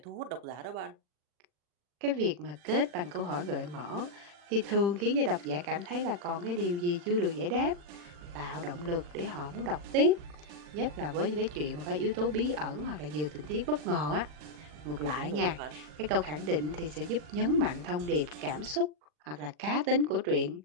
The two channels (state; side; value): late; left; 40 ms